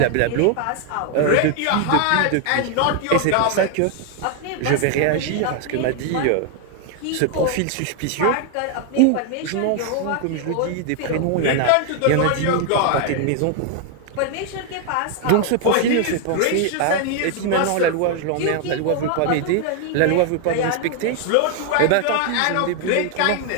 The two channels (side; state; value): both; different; correlation 0.00